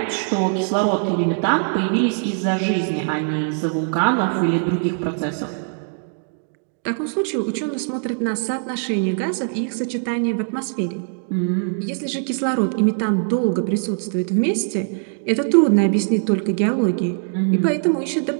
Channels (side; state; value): left; silent; 64 dB below the other